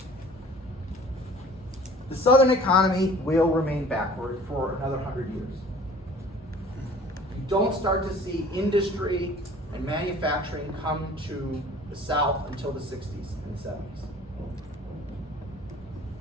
The Southern economy will remain backward for another 100 years. You don't start to see industry and manufacturing come to the South until the 60s and the 70s.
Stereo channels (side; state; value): both; normal; correlation 0.48